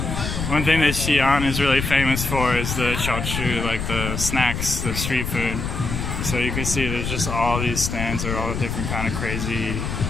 One thing that Xi'an is really famous for is the xiaochu, like the snacks, the street food. So you can see there's just all these stands are all different kind of crazy,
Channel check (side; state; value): left; noise; rumble, 3 dB below the sound